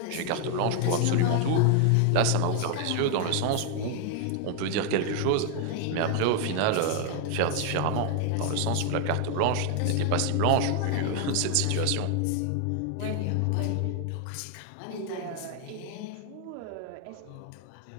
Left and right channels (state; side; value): different; both; correlation 0.00